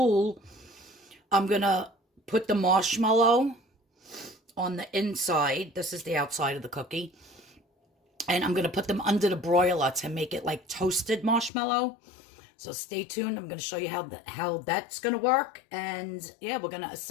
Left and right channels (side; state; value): right; drops out; at 11.5 s